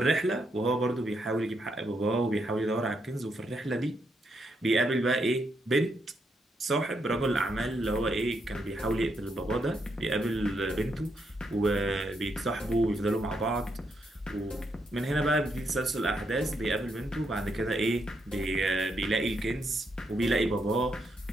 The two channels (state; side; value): normal; both; correlation 0.79